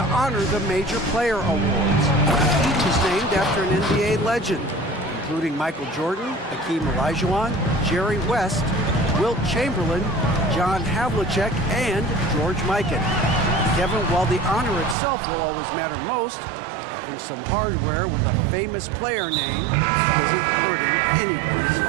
honor the major player awards. Each is named after an NBA legend, including Michael Jordan, Hakeem Olajuwon, Jerry West, Wilt Chamberlain, John Havlicek, and George Mikan. Kevin, while the honor itself will always matter most, having some hardware with a famous player name isn't hurting anybody's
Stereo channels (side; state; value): left; drops out; at 15.0 s